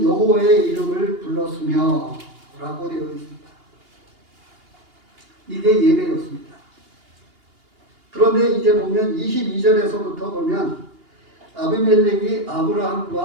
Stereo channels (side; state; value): left; late; 2.8 ms